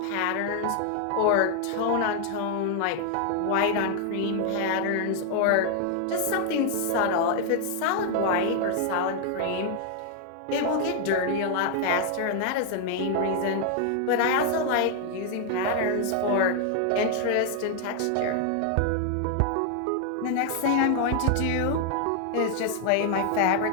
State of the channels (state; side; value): different; both; correlation 0.00